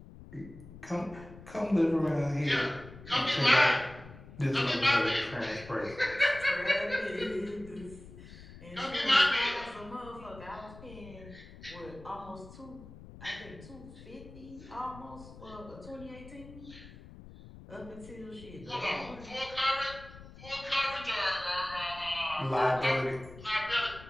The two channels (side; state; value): left; noise; rumble, 17 dB below the sound